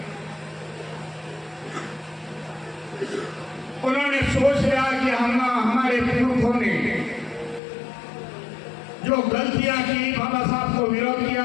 उन्होंने सोच लिया कि हमारे पुरखों ने जो गलतियां की, बाबा साहब को विरोध किया,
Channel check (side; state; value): right; drops out; at 7.6 s